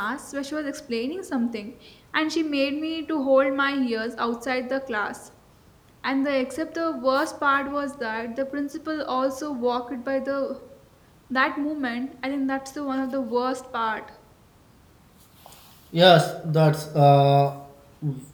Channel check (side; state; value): both; identical; correlation 1.00